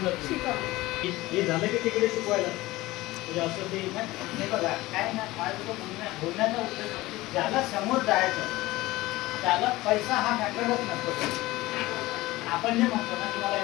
हे झालं की तिकडे शिकवायला म्हणजे असं ते हे बघा काय ना माझं बोलण्याचा उद्देश ज्याला समोर जायचं त्याला पैसा हा मॅटरच नसतो. आपण जे म्हणतो ना की मला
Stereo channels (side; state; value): right; quieter; 18.7 dB